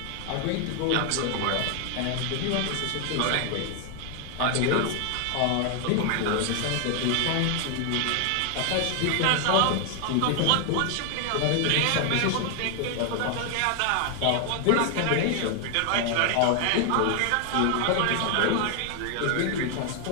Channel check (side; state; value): both; different; correlation 0.00